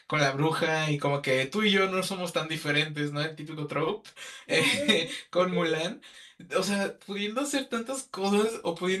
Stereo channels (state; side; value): identical; both; correlation 1.00